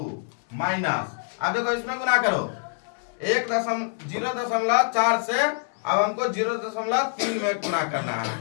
माइनस, अब देखो इसमें गुना करो 0.4 से अब हमको 0.3 में गुना करना है।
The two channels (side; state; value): right; silent; digital silence